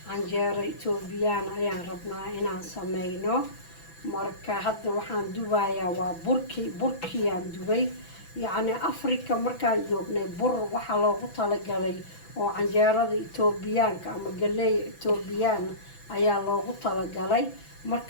canjeero etoobiyaan ayaan rabnaa inaan sameyno. marka hadda waxaan dubayaa waa burkiyaan dubay. yacni afrika markaan joognay bur waxaa loogu talagalay oo canjeerada etoobiyaanka ama galeey etoobiyaan ayaa loogu talagalay.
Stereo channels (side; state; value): right; late; 6.0 ms